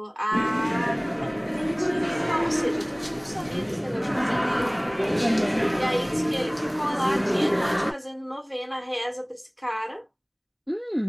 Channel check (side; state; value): both; identical; correlation 1.00